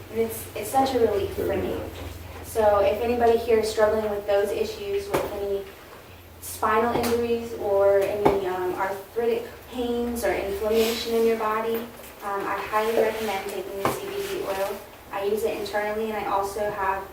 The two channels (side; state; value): both; identical; correlation 1.00